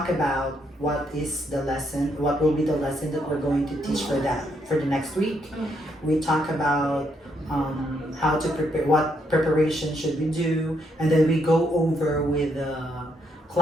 about what is the lesson, what will be the lesson that we're going to teach for the next week. We talk about how to prepare, what preparation should we do, and then we go over with the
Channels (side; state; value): both; normal; correlation 0.75